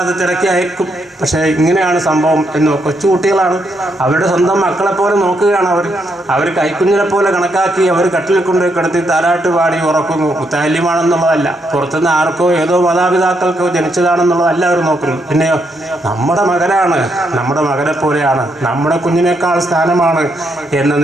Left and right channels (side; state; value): both; normal; correlation 0.78